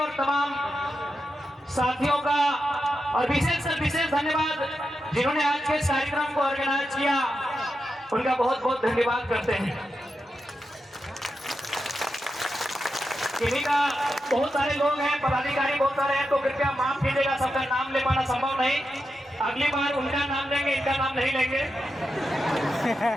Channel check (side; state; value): both; normal; correlation 0.88